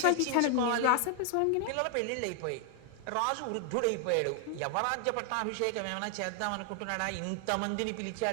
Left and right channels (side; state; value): both; different; correlation 0.00